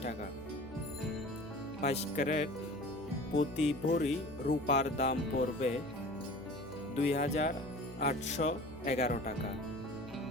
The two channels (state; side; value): noise; left; hum, 16 dB below the sound